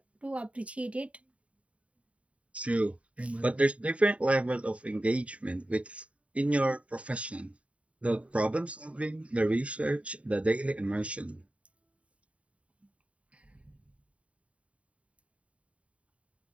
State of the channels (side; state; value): left; late; 0.065 ms